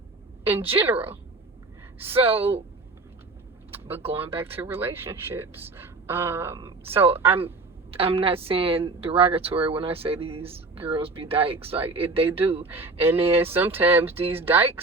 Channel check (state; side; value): quieter; left; 3.5 dB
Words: in general. So, but going back to relationships, so I'm not saying derogatory when I say these girls be dykes. Like, they do. And then sometimes these